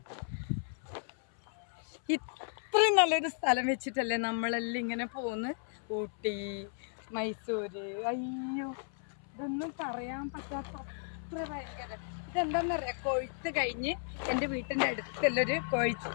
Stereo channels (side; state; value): right; silent; 55 dB below the other